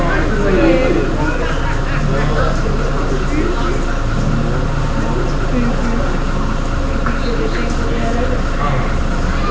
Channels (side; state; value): both; identical; correlation 1.00